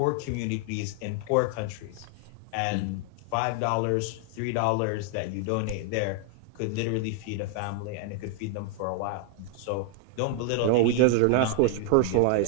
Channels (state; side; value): different; both; correlation 0.00